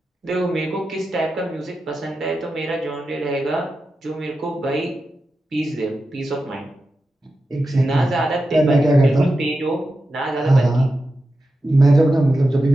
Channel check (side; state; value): both; normal; correlation 0.91